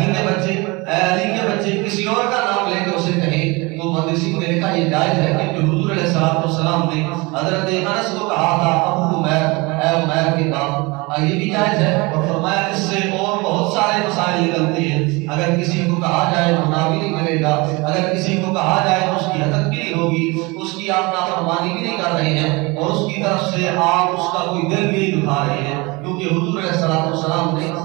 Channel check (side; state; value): left; quieter; 25.5 dB